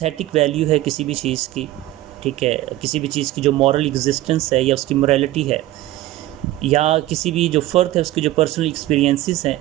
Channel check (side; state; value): left; quieter; 15.8 dB